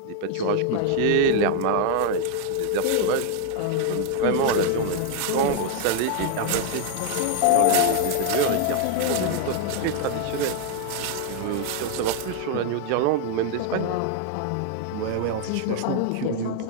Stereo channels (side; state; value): both; different; correlation 0.00